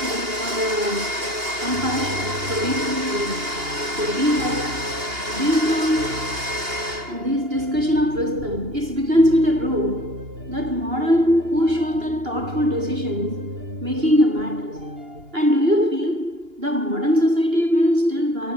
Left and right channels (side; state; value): left; late; 2.8 ms